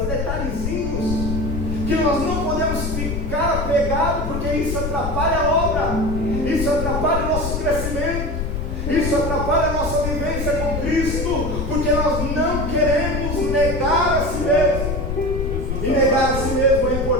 detalhezinhos, que nós não podemos ficar apegados, porque isso atrapalha a obra, isso atrapalha o nosso crescimento, isso atrapalha a nossa vivência com Cristo, porque nós não queremos negar a si mesmo. E negar a si mesmo é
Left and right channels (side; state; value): left; noise; rumble, 3 dB below the sound